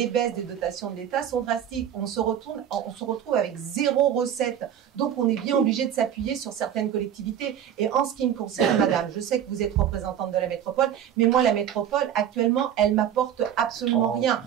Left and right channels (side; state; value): left; quieter; 9.7 dB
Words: baisses des dotations de l'État sont drastiques. On se retrouve avec 0 recette. Donc, on est bien obligé de s'appuyer sur certaines collectivités. Et en ce qui me concerne, madame, je sais que vous êtes représentante de la métropole, mais moi, la métropole, actuellement, elle m'apporte absolument rien.